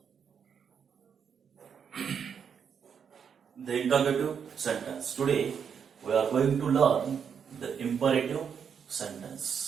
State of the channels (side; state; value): left; quieter; 7.2 dB